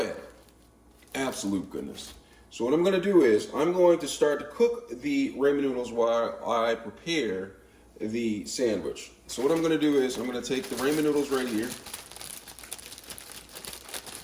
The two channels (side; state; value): both; identical; correlation 1.00